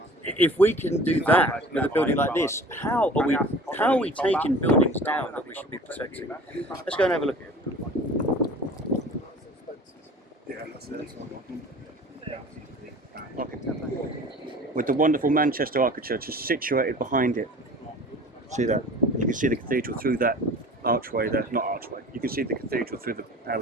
if we can do that with a building like this, how are we taking buildings down that we should be protecting? Let's go and have a look at it. With the wonderful Manchester architecture just situated behind it. See that? You can see the cathedral through that archway there. Not archway. You can see the cathedral through the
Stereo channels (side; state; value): both; normal; correlation 0.43